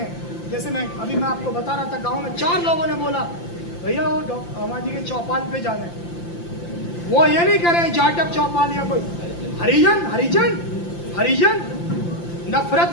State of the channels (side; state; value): right; late; 5.8 ms